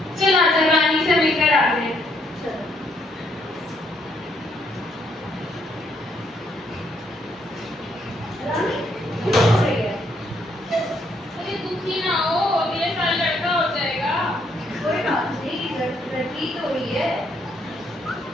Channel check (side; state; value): both; normal; correlation 0.71